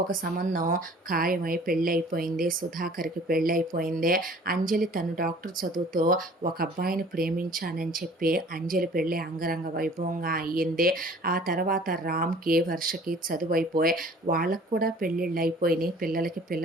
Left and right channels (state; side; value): normal; both; correlation 0.50